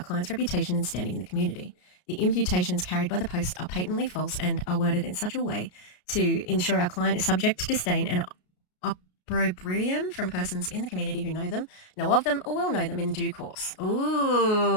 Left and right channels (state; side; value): late; right; 33 ms